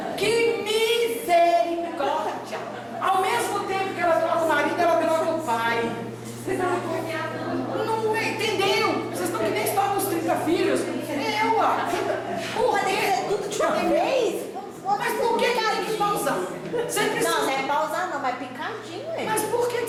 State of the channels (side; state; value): both; identical; correlation 1.00